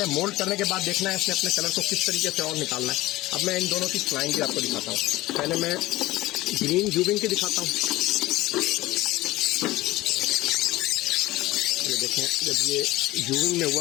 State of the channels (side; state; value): right; quieter; 18.0 dB